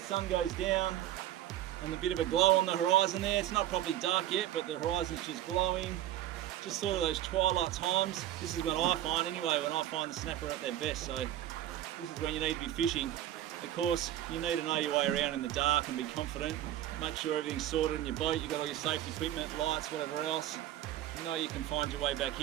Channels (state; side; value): quieter; left; 12.8 dB